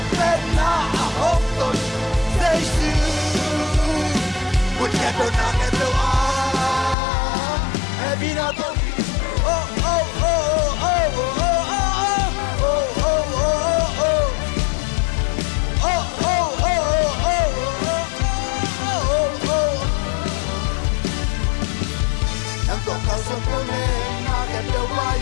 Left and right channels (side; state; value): right; drops out; at 7.0 s